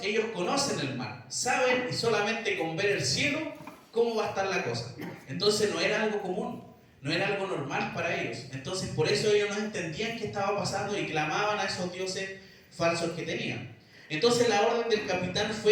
ellos conocen el mar, saben, y solamente con ver el cielo cómo va a estar la cosa. Entonces no era algo común. no era algo normal para ellos. Entonces por eso ellos no entendían qué estaba pasando y clamaban a esos dioses falsos que tenían. Entonces la orden del capitán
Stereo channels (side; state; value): both; identical; correlation 1.00